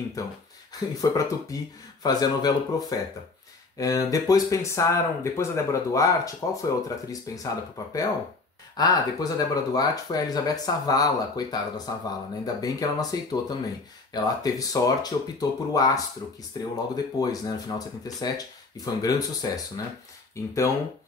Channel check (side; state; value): right; quieter; 3.7 dB